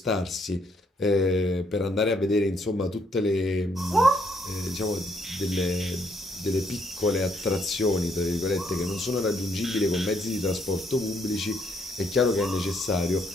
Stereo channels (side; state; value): both; normal; correlation 0.71